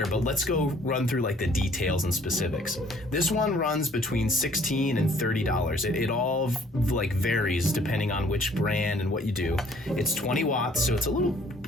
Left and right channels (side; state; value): both; normal; correlation 0.59